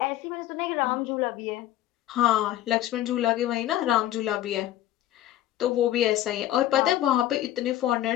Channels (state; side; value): quieter; right; 13.4 dB